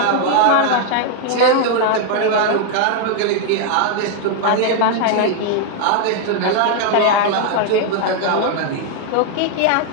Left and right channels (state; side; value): different; both; correlation 0.00